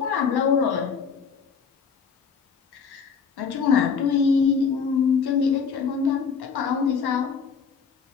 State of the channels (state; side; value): quieter; right; 6.0 dB